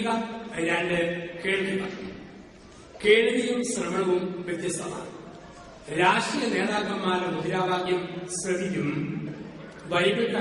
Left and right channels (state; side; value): identical; both; correlation 1.00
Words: 2 കേൾക്കുക. കേൾവിയും ശ്രവണവും വ്യത്യസ്തമാണ്. രാഷ്ട്രീയ നേതാക്കന്മാരുടെ മുദ്രാവാക്യം ശ്രവിക്കും. ബൈബിൾ